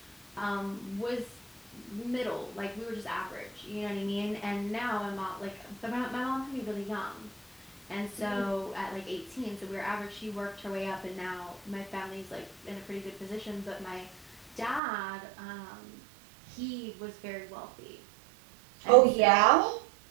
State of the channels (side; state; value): left; drops out; at 14.8 s